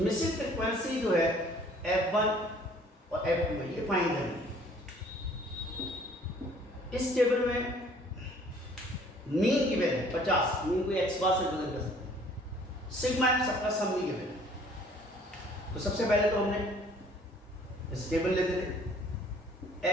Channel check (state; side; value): normal; both; correlation 0.56